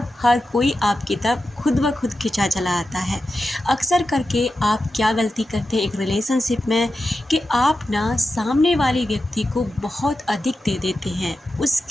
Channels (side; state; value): both; normal; correlation 0.91